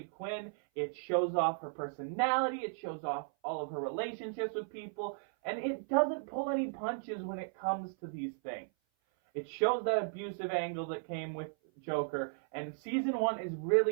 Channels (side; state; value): left; silent; 54 dB below the other